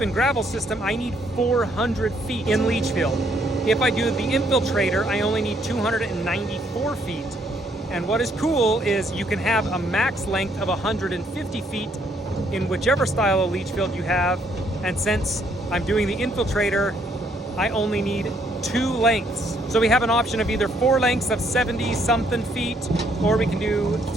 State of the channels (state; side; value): normal; both; correlation 0.69